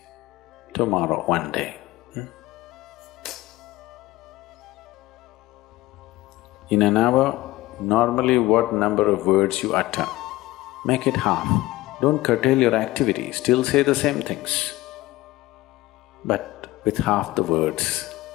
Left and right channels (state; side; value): quieter; right; 18.1 dB